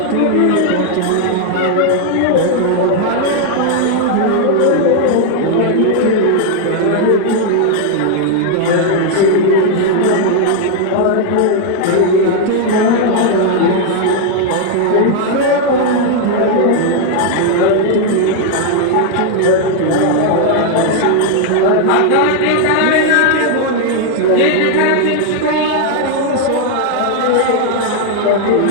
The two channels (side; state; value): both; different; correlation 0.00